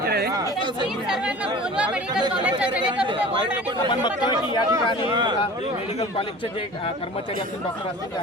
सर्वांना बोलवा मेडिकल कॉलेजच्या जेणेकरून ते वॉर्ड आणि आपण बघतोय की या ठिकाणी मेडिकल कॉलेजचे जे कर्मचारी असतील डॉक्टर असतील ते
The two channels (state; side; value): normal; both; correlation 0.41